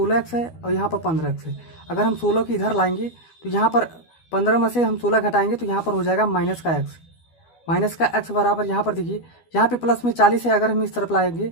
है और यहाँ पर 15x है। अगर हम 16 की इधर लाएंगे तो यहाँ पर 15 में से हम 16 घटाएंगे तो यहाँ पर हो जाएगा माइनस का x बराबर, यहाँ पर देखिए यहाँ पे प्लस में 40 है, अगर हम इस तरफ लाएंगे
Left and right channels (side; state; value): right; late; 12 ms